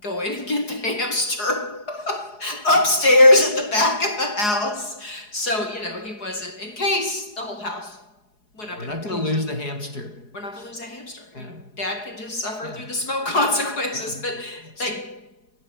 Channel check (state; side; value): late; right; 4.8 ms